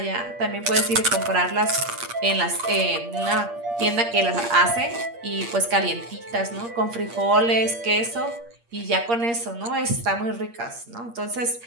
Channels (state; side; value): late; left; 8.6 ms